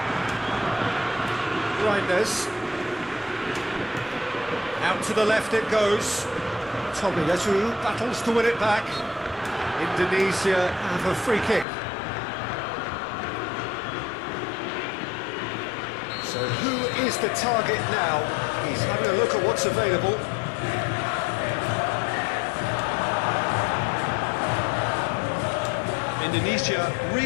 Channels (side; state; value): right; drops out; at 11.7 s